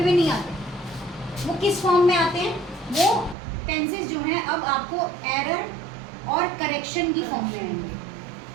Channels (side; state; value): left; drops out; at 3.4 s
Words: नहीं आते। वो किस फॉर्म में आते हैं? वो टेंसेस जो हैं अब आपको एरर और करेक्शन की फॉर्म में आएंगे।